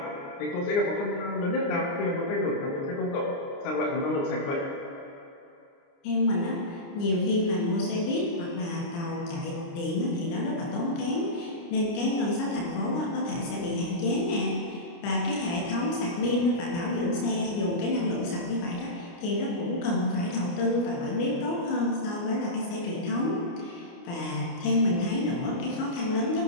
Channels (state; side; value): late; right; 29 ms